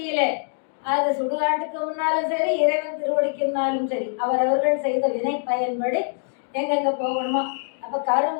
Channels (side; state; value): right; silent; digital silence